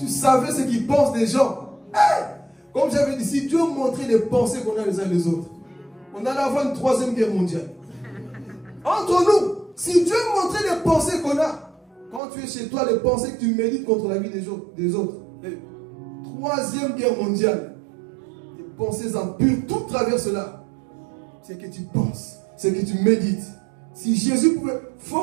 savais ce qu'ils pensent des gens. Comme j'avais dit, si Dieu montrait les pensées qu'on a les uns les autres, on allait avoir une 3e guerre mondiale. Entre nous, si Dieu montrait les pensées qu'on a, quand tu es chez toi, les pensées que tu médites contre la vie des autres, 3e guerre mondiale, les pensées impures, tout travers cela. C'est que tu penses, c'est que tu médites. Si Jésus pouvait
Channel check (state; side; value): drops out; left; at 12.2 s